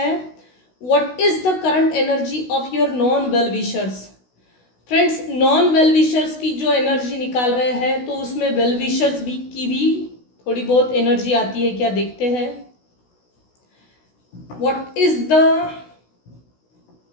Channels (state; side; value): late; right; 16 ms